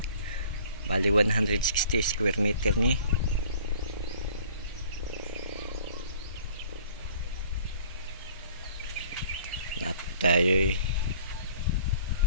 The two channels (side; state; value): both; inverted; correlation -0.52